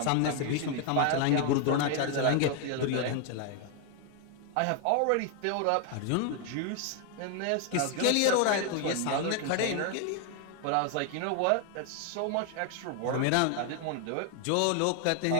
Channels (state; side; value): different; both; correlation 0.00